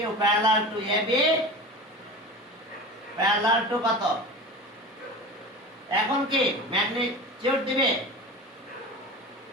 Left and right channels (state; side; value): normal; both; correlation 0.32